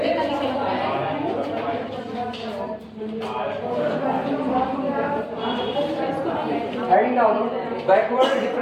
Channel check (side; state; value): both; identical; correlation 1.00